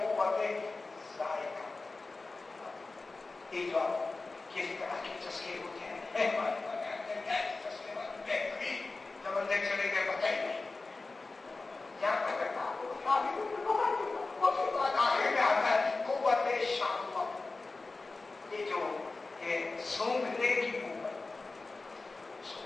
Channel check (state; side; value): quieter; right; 3.6 dB